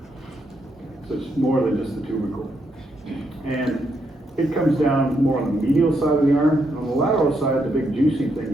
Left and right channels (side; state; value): both; normal; correlation 0.79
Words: So it's more than just the tubercle. And it comes down more on the medial side of the arm. And on the lateral side, the big juicy thing